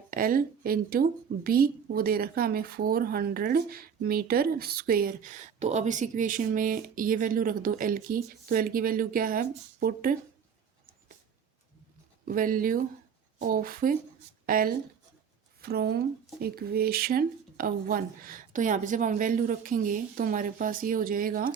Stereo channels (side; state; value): left; quieter; 7.2 dB